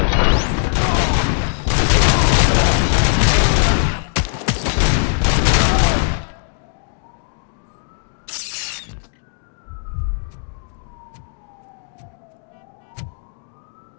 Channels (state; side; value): silent; right; digital silence